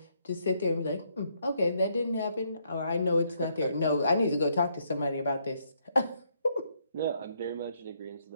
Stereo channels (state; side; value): inverted; both; correlation -0.73